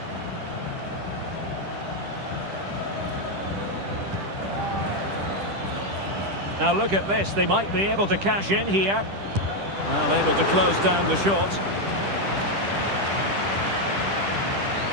Now look at this, they might be able to cash in here. Well, able to close down the shot.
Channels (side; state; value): left; late; 10 ms